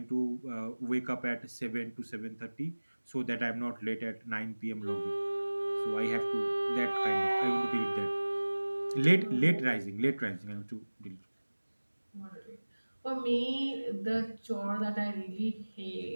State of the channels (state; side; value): inverted; both; correlation -1.00